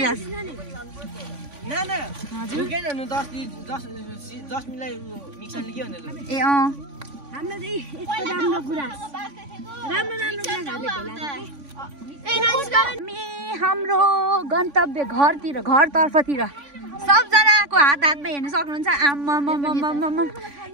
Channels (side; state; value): left; late; 3.5 ms